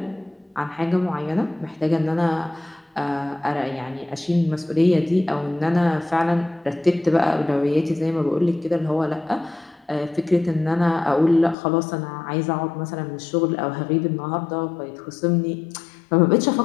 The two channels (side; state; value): right; drops out; at 11.6 s